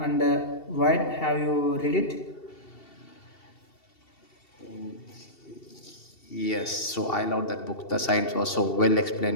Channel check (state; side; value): late; right; 2.7 ms